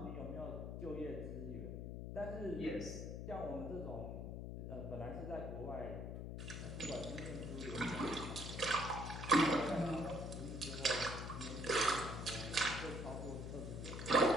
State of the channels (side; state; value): left; noise; hum, 5 dB below the sound